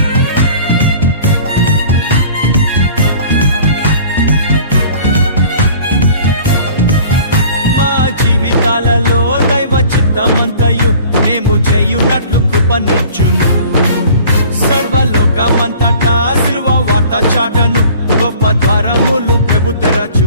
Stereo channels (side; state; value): both; inverted; correlation -0.48